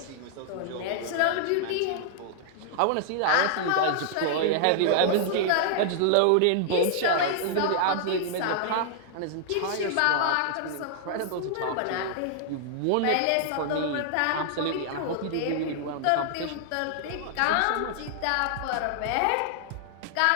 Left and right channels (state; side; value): different; both; correlation -0.01